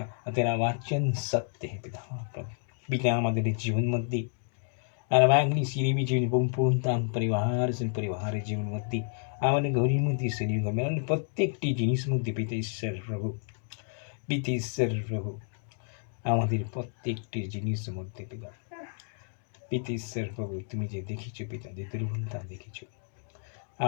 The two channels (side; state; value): right; silent; 57 dB below the other